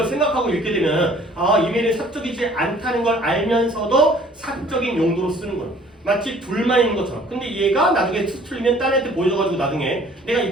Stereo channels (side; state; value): both; normal; correlation 0.54